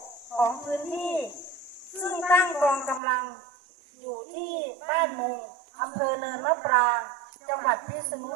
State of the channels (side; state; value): left; drops out; at 3.0 s